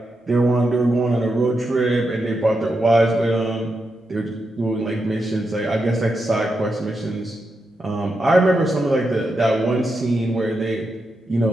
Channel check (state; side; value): normal; both; correlation 0.86